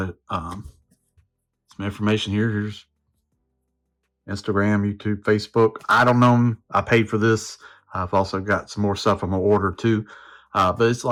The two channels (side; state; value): both; identical; correlation 1.00